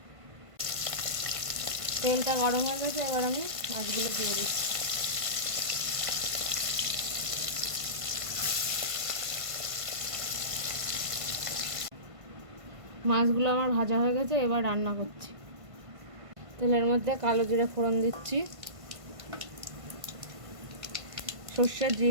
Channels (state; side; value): late; left; 1.5 ms